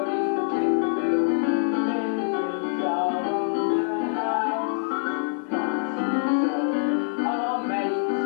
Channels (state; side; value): silent; right; 62 dB below the other